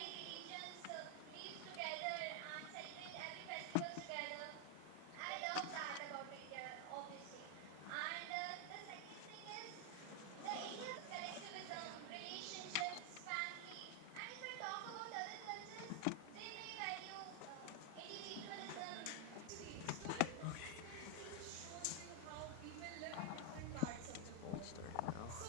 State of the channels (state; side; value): different; both; correlation 0.00